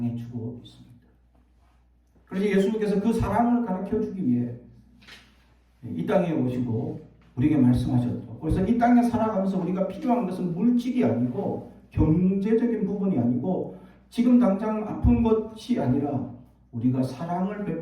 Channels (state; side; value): identical; both; correlation 1.00